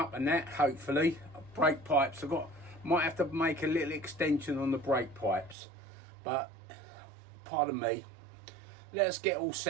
and that, hopefully. Brake pipes, might have to make a little extension on the brake pipes, but pardon me, let's get all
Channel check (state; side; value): drops out; left; at 5.6 s